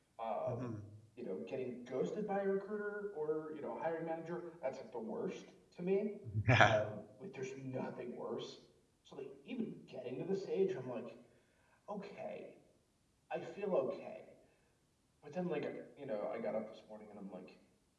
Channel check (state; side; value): identical; both; correlation 1.00